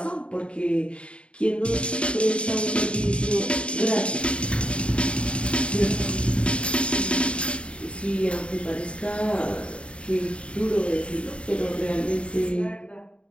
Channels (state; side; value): late; right; 0.058 ms